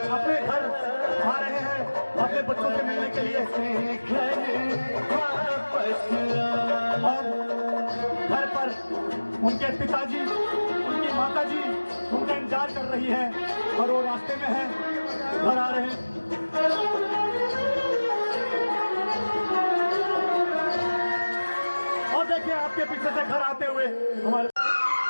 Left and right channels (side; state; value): both; inverted; correlation -1.00